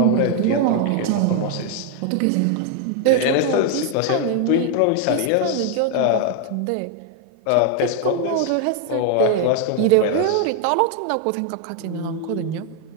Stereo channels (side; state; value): both; different; correlation 0.00